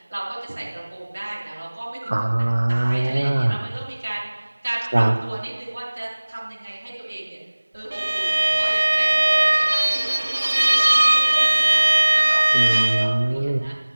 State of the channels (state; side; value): inverted; both; correlation -1.00